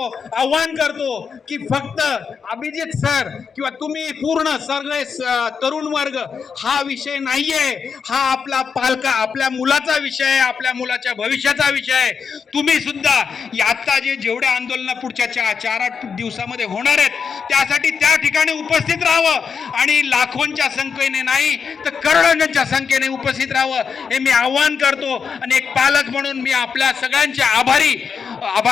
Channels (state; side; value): quieter; right; 6.1 dB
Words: आव्हान करतो की फक्त अभिजित सर किंवा तुम्ही पूर्ण सगळे तरुण वर्ग हा विषय नाहीये, हा आपल्या मुलाचा विषय आहे, आपल्या मुलाच्या भविष्याचा विषय आहे. तुम्ही सुद्धा आता जेवढे आंदोलन पुढच्या 4-8 दिवसामध्ये होणार आहेत त्यासाठी त्या ठिकाणी उपस्थित राहावं आणि लाखोंच्या संख्येने नाही तर करोडोंच्या संख्येने उपस्थित राहावं हे मी आव्हान करतो. आणि एक पालक म्हणून मी आपल्या सगळ्यांचे